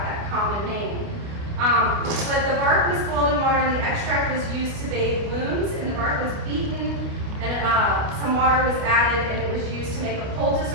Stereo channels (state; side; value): late; left; 29 ms